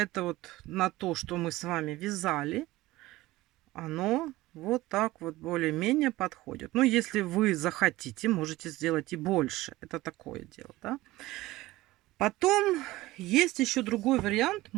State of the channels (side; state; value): left; quieter; 18.1 dB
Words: вот на то, что мы с вами вязали, оно вот так вот более-менее подходит. Ну, если вы захотите, можете сделать и больше. Это такое дело, да. Потом есть еще другой вариант.